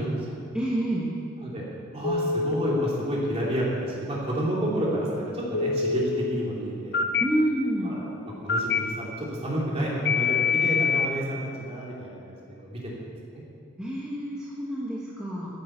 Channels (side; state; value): both; normal; correlation 0.49